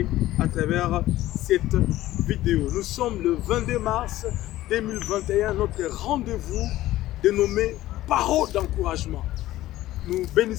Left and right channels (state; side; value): quieter; right; 15.4 dB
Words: à travers cette vidéo. Nous sommes le 22 mars 2021, notre rendez-vous dénommé Parole d'encouragement. Nous